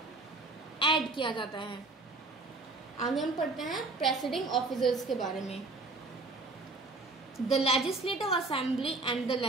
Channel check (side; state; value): left; quieter; 3.3 dB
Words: ऐड किया जाता है। आगे हम पढ़ते हैं प्रेसिडिंग ऑफिसर्स के बारे में। The Legislative Assembly and the